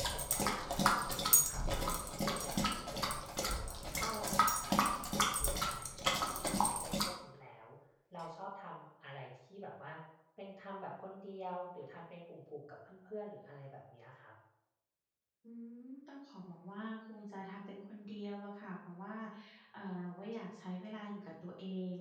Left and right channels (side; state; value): both; identical; correlation 1.00